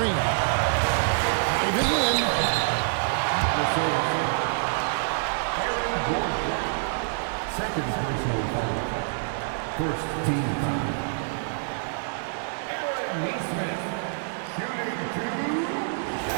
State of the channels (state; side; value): silent; left; digital silence